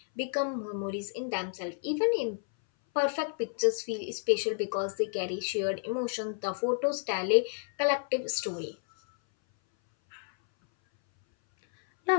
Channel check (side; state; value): right; silent; 57 dB below the other